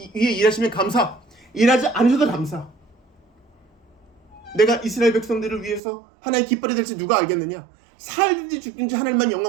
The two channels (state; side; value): drops out; left; at 5.8 s